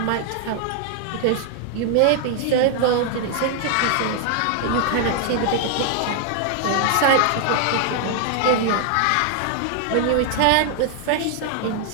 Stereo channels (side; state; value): both; different; correlation 0.00